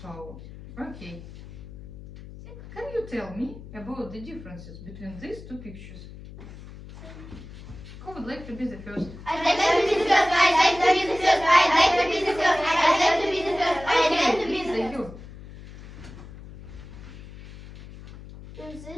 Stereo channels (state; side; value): noise; left; hum, 15 dB below the sound